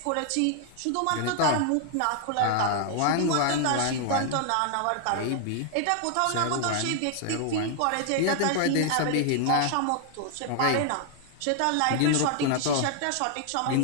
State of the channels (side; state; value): both; different; correlation 0.00